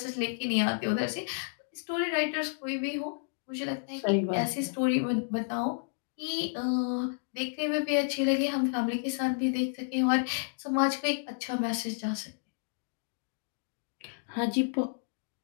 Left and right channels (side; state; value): right; silent; digital silence